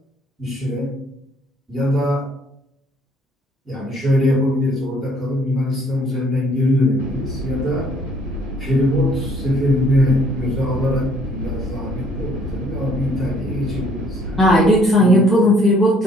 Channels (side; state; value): both; normal; correlation 0.62